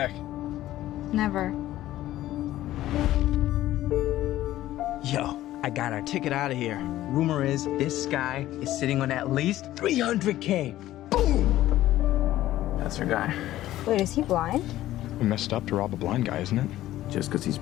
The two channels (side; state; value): right; quieter; 14.5 dB